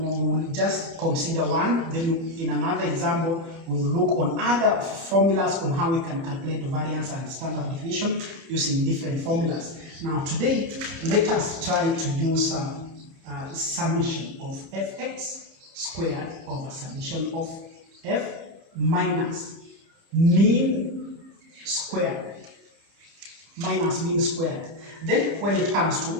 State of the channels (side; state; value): left; late; 30 ms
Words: just consider one. Then in another example, we will look on other formulas on how we can calculate variance and standard deviation using different formulas. Now today, let us try to use summation of fx squared over summation of f minus mean squared minus mean squared. Then when it comes